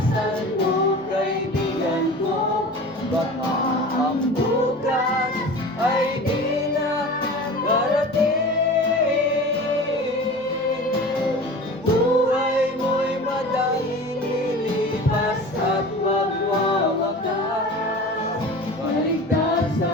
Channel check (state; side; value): noise; left; hum, 30 dB below the sound